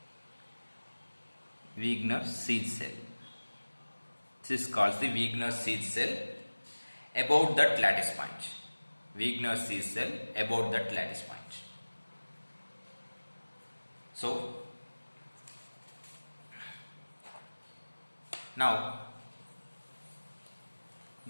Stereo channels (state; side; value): inverted; both; correlation -1.00